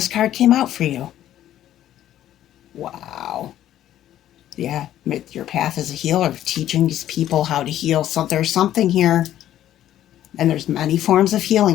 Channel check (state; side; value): quieter; right; 12.2 dB